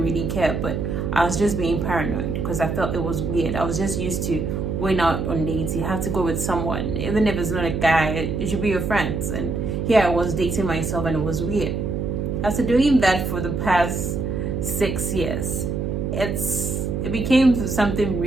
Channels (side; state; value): right; noise; hum, 2 dB below the sound